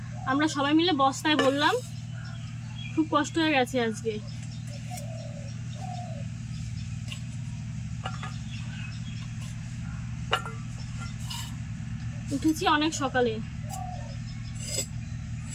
আমরা সবাই মিলে বস্তায় বললাম। খুব কষ্ট হয়ে গেছে আজকে। উঠেছি অনেক সকালে,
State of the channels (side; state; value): both; identical; correlation 1.00